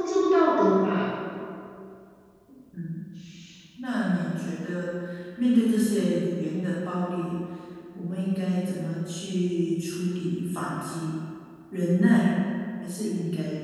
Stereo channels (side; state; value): both; identical; correlation 1.00